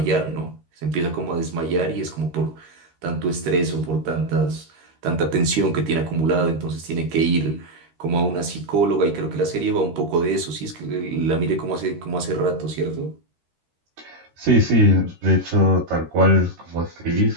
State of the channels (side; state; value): left; late; 13 ms